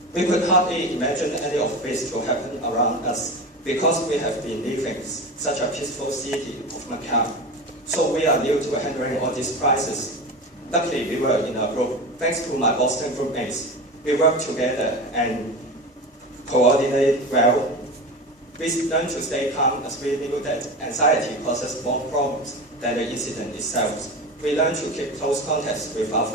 We could hardly imagine any of this to happen around us. because we have been living such a peaceful city of Macau. So we are new to handling all these crises. Luckily, we were in a group. Thanks to my Boston groupmates, we work together and coordinate well. We learned to stay calm as we knew that anxiety causes more problems than the incident itself. We learned to keep close contacts with our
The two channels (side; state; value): both; normal; correlation 0.27